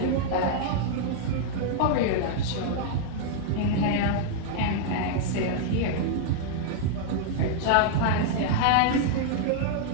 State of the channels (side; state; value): both; different; correlation -0.01